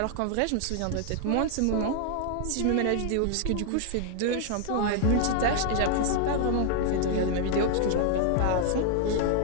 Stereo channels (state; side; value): different; both; correlation 0.00